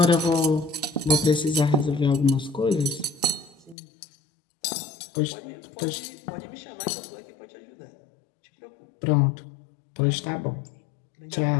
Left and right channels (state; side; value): drops out; right; at 3.8 s